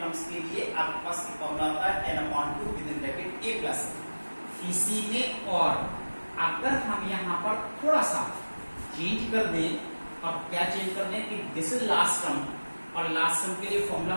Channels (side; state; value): both; inverted; correlation -1.00